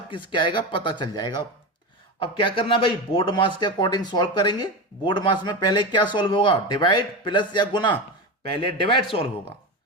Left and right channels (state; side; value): normal; both; correlation 0.20